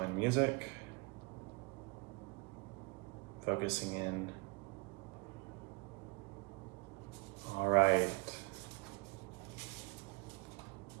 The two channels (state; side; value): quieter; left; 29.0 dB